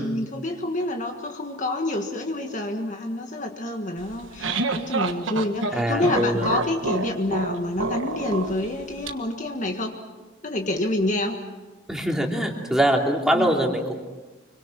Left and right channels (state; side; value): normal; both; correlation 0.49